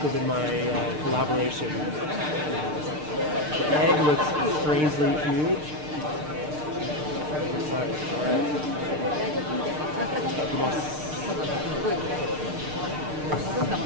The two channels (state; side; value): late; left; 6.6 ms